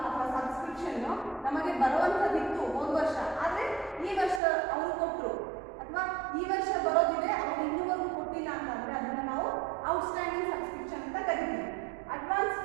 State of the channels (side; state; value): left; drops out; at 4.4 s